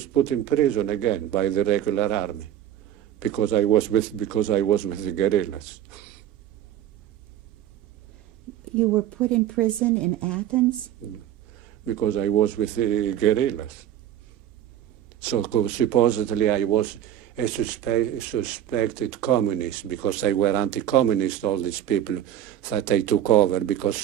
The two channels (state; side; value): quieter; left; 11.4 dB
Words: put in prison again by the regular army because I was with the guerrillas. You were put in prison in Athens? Because I was with the guerrillas. So supposedly I was a suspected communist because they were anti-communist, all these people that they took over,